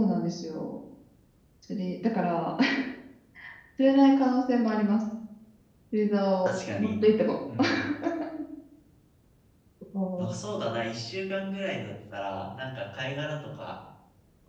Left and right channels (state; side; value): identical; both; correlation 1.00